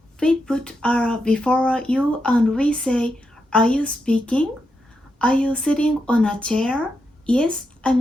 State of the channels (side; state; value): both; normal; correlation 0.84